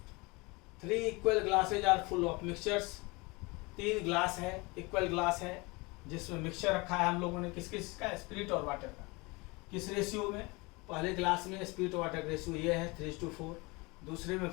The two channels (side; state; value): right; quieter; 25.8 dB